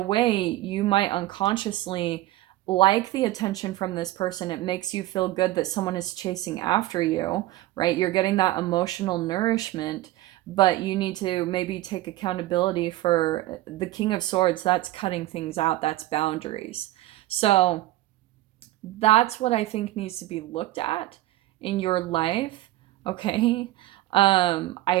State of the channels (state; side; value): quieter; left; 16.5 dB